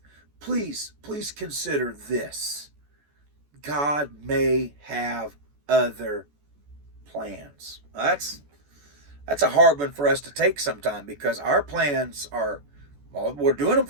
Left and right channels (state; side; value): late; left; 14 ms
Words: Please consider this. God may have other plans. That's a hard one for us to take sometime, because our plans are, well, we're doing them